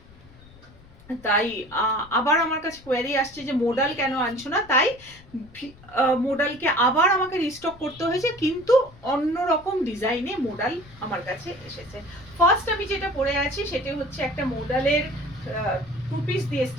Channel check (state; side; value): noise; left; rumble, 23 dB below the sound